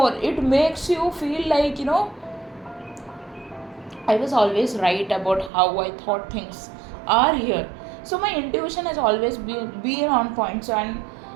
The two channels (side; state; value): left; drops out; at 5.5 s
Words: It makes you feel like, I was always right about how I thought things are here. So my intuition has always been on point. So, and